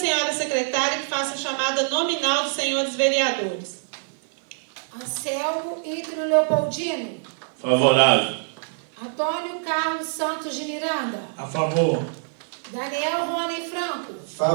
secretária que faça a chamada nominal dos senhores vereadores. Anselmo Ítrio Leopoldino. Favorável. Antônio Carlos Santos de Miranda. A favor. Daniel Rony Franco.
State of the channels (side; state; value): left; silent; 60 dB below the other